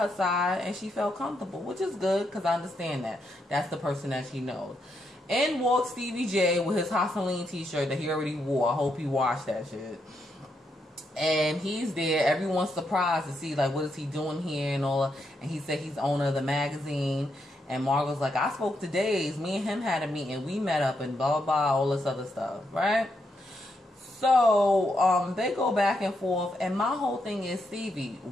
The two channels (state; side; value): normal; both; correlation 0.80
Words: side, and she felt comfortable, which is good, because I understand that. That's the person that she knows. In walks Stevie J with his Hosseline t-shirt that he already wore. I hope he washed that shit. And he's there. Everyone's surprised to see, like, what is he doing here and all. And he said he's owner of the magazine. And Margot's like, I spoke to Days. Me and him had a meeting. We met up and blah, blah, blah, all this other stuff, right? So, they go back and forth. And my whole thing is, Stevie,